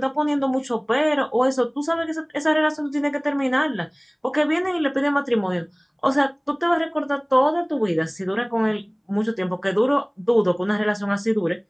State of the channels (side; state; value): both; identical; correlation 1.00